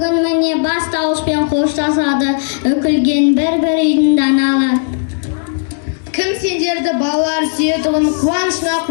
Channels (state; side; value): silent; right; digital silence